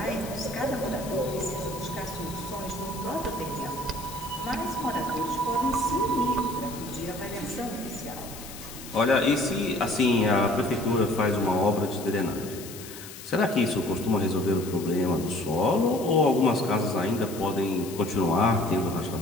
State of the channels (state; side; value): noise; left; hiss, 14 dB below the sound